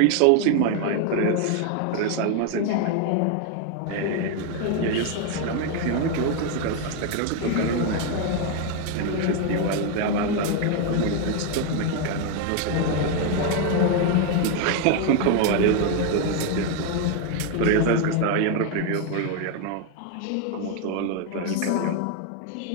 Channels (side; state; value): both; different; correlation 0.01